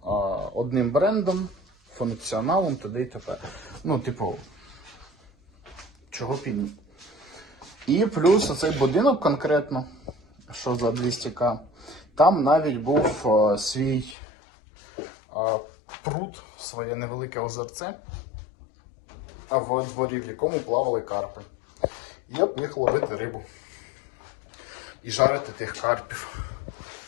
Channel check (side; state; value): right; drops out; at 14.2 s